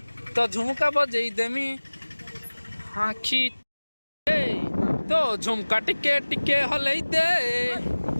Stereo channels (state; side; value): inverted; both; correlation -1.00